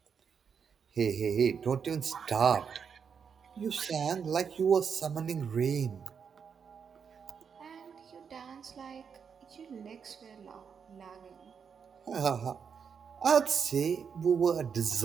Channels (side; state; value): left; quieter; 6.7 dB